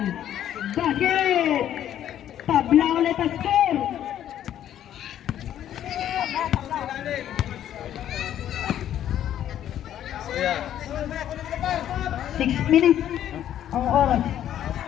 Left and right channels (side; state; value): right; quieter; 11.0 dB